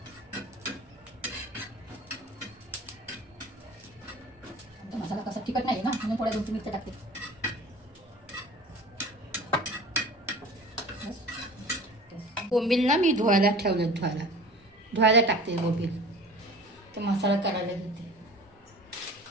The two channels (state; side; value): normal; both; correlation 0.41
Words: मसाला कसा तिखट नाही ना, म्हणून थोड्या 2-3 मिरच्या टाकते. बोंबील ना मी धुवायला ठेवलं, धुवायला टाकते बोंबील. तर मसाला करायला घेते.